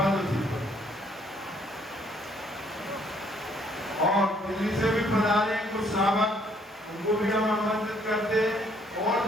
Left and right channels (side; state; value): both; normal; correlation 0.65